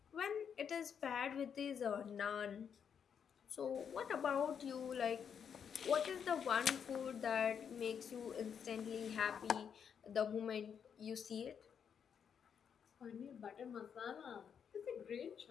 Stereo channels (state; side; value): quieter; right; 7.5 dB